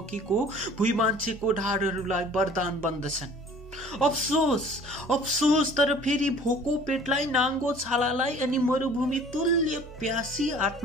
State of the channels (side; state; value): both; normal; correlation 0.50